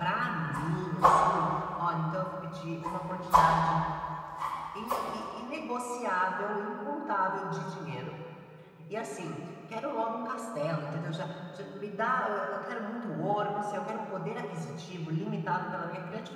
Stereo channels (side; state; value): both; identical; correlation 1.00